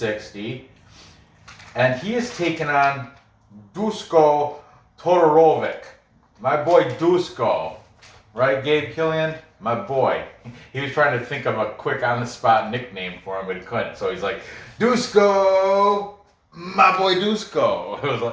and he is taking on Dusko Todorovic, my boy Dusko, right, Gabe Killian, my boy. He was trying to think of a quick on-the-spot nickname for him, but he couldn't. So he's like, Dusko, my boy Dusko. It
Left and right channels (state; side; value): identical; both; correlation 1.00